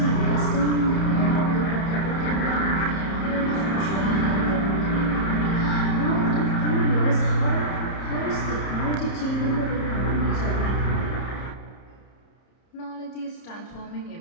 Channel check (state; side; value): late; right; 30 ms